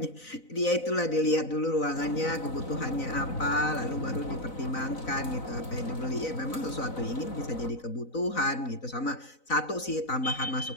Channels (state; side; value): late; right; 4.0 ms